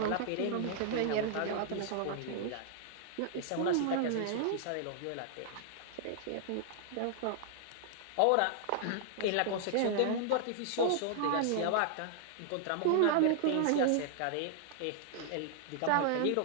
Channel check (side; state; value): both; different; correlation -0.01